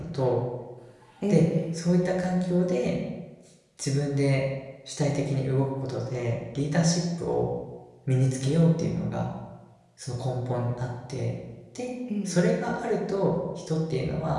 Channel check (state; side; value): identical; both; correlation 1.00